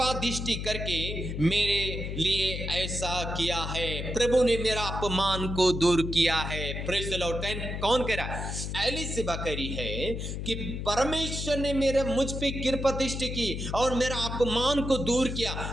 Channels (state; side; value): noise; left; hum, 5 dB below the sound